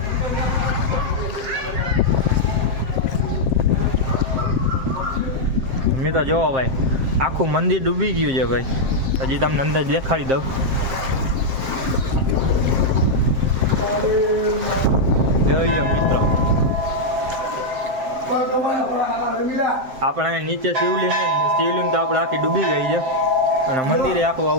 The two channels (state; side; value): late; left; 7.6 ms